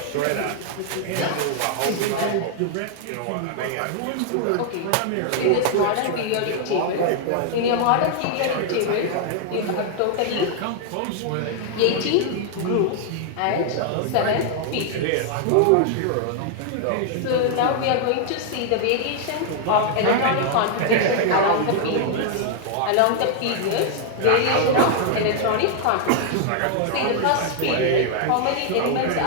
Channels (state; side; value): different; both; correlation 0.00